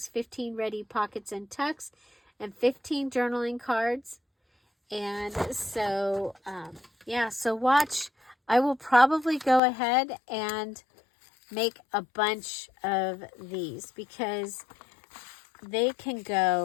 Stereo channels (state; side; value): drops out; right; at 9.6 s